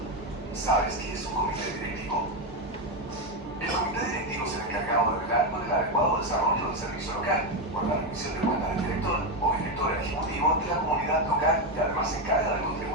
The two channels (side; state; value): both; normal; correlation 0.09